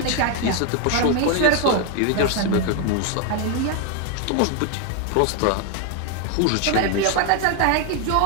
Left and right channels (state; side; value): different; both; correlation 0.01